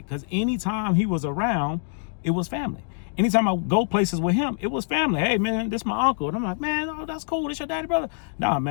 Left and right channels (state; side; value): silent; right; 62 dB below the other